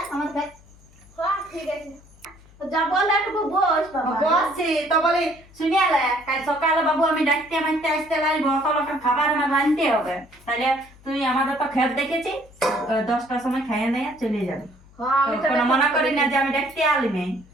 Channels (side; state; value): left; noise; hum, 25 dB below the sound